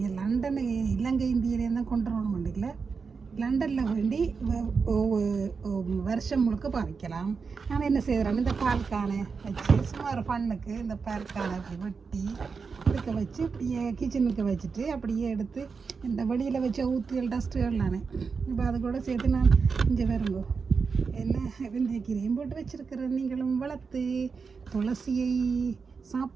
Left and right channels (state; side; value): quieter; left; 5.2 dB